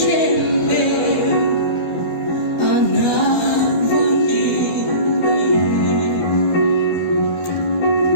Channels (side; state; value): right; late; 12 ms